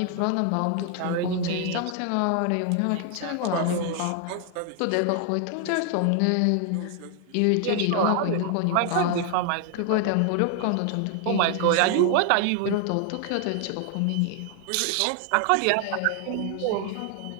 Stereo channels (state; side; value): different; both; correlation 0.00